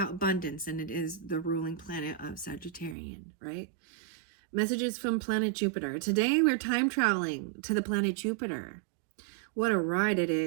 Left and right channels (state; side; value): drops out; left; at 3.0 s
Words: abundance, and it is the ruling planet of Sagittarian, right? Messages from planet Jupiter. Today we're time traveling to the planet Jupiter. What a ride it